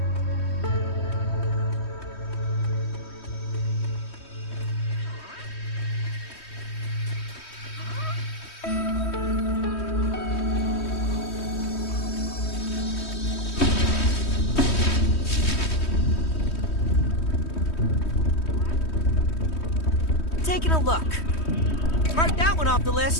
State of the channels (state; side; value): late; right; 3.2 ms